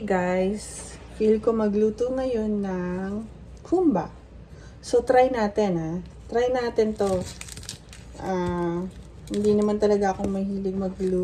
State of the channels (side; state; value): both; identical; correlation 1.00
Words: guys? Feel ko magluto ngayon ng kumba. So, try natin, ha? Try natin to. Hindi naman talaga ako mahilig